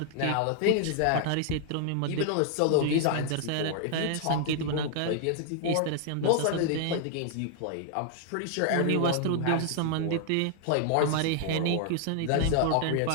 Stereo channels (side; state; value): both; different; correlation 0.00